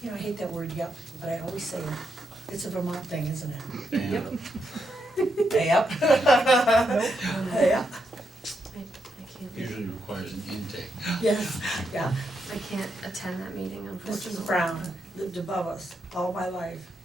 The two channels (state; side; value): normal; both; correlation 0.82